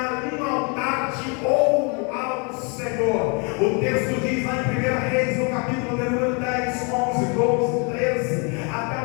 um altar de ouro ao Senhor. O texto diz lá em 1 Reis, no capítulo de número 10, 11, 12, 13, até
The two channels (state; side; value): quieter; right; 34.4 dB